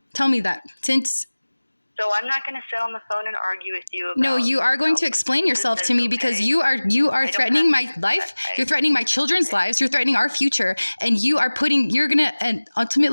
Tell me that. So I'm not going to sit on the phone and argue with you about... No, you are going to explain yourself to me because you are threatening my life. You're threatening my children's lives. You're threatening our future. And and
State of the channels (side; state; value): both; inverted; correlation -1.00